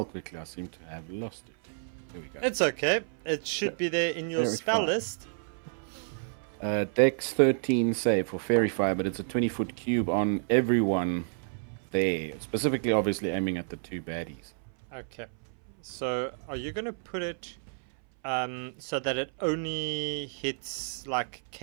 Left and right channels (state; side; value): silent; left; 58 dB below the other